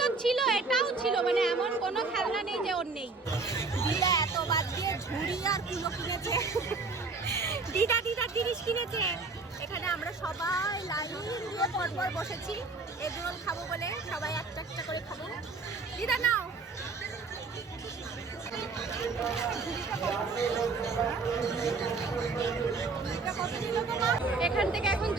ছিল, এটাও ছিল, মানে এমন কোনো খেলনা নেই যে ওর নেই। দিদা এত বাদ দিয়ে ঝুড়ি আর কুলো কিনেছে। দিদা জিনিস কিনেছে। এখানে আমরা সবাই লাইন দিয়ে পরপর বসেছি এগরোল খাবো বলে। সবাই একটা একটা করে খাবো। দিদা নাও। এখান থেকে এখন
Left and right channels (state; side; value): quieter; left; 4.0 dB